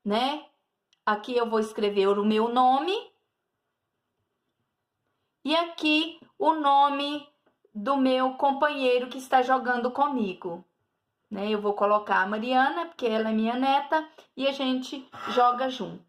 né? Aqui eu vou escrever o meu nome e aqui o nome do meu companheiro que está jogando comigo, né? Eu vou colocar a Mariana, porque ela é minha neta, e a gente joga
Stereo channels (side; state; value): both; identical; correlation 1.00